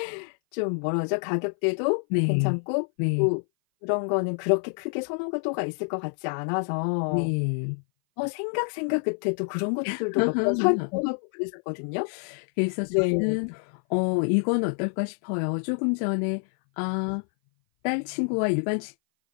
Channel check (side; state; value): right; silent; 57 dB below the other